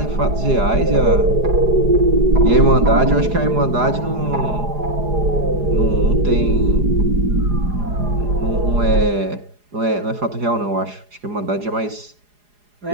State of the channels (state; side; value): late; left; 4.8 ms